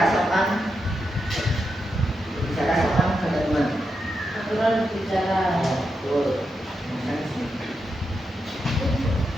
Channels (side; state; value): both; normal; correlation 0.86